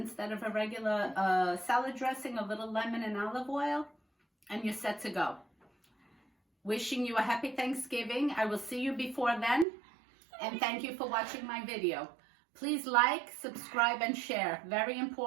of a regular salad dressing, a little lemon and olive oil, and you're set to go. Wishing you a happy Thanksgiving. I will see you before then, and thank you for watching my video. Please like, subscribe, and share. Very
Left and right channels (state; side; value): drops out; left; at 9.7 s